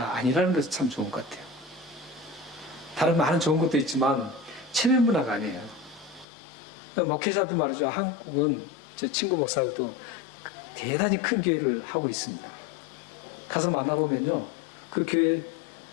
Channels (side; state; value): right; drops out; at 6.2 s